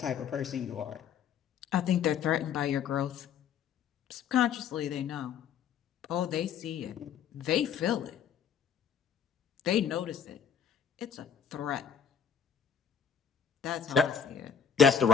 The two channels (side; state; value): right; quieter; 7.7 dB